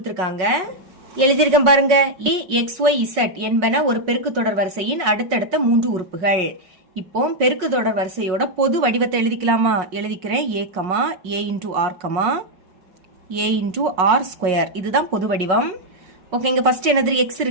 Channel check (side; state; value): left; late; 5.4 ms